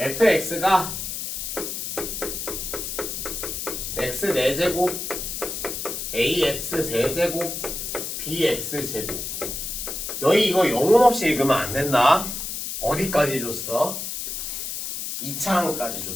x 4제곱 ax 세제곱 bx 제곱. 너희 이거 영혼 없이 읽으면 안 된다. 어디까지 줬어? 2차항까지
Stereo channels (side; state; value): left; noise; hiss, 5 dB below the sound